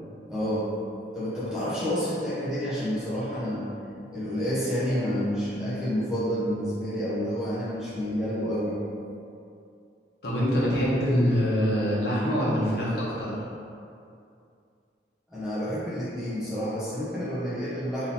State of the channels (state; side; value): normal; both; correlation 0.66